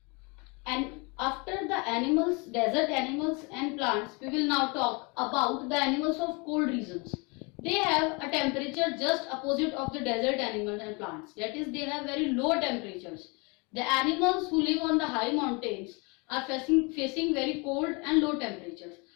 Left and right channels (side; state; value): right; quieter; 30.0 dB